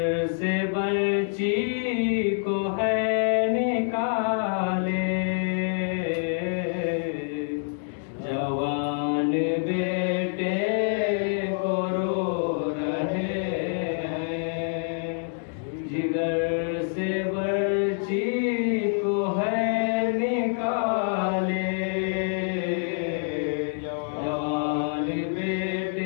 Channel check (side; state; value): right; silent; digital silence